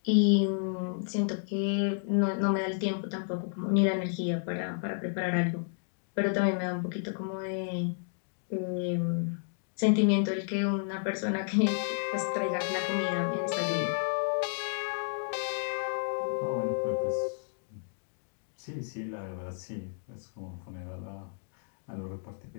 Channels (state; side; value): silent; right; digital silence